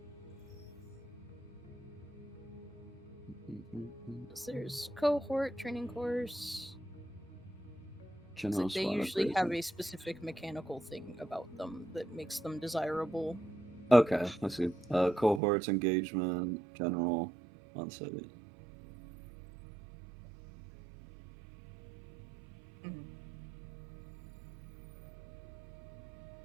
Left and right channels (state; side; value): drops out; left; at 15.4 s